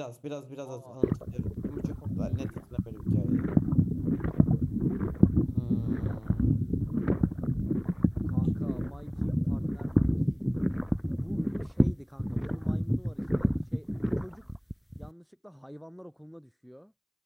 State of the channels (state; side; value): identical; both; correlation 1.00